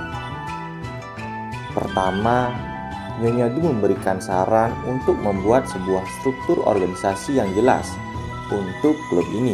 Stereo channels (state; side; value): identical; both; correlation 1.00